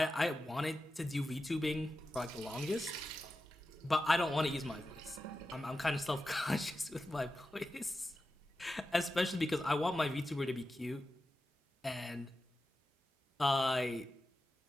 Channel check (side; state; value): both; normal; correlation 0.92